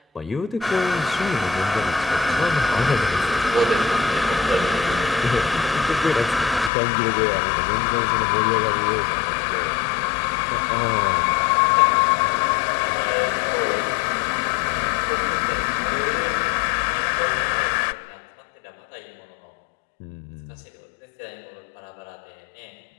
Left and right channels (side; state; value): right; drops out; at 6.7 s